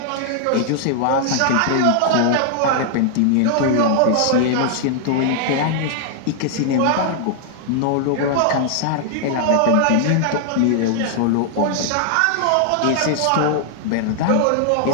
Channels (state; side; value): different; both; correlation -0.01